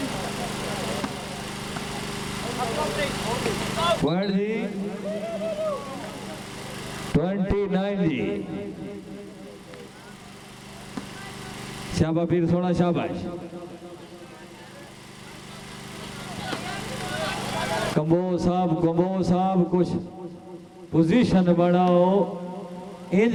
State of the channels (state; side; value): identical; both; correlation 1.00